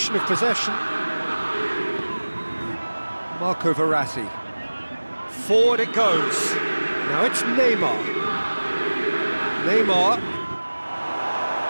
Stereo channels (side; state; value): both; inverted; correlation -1.00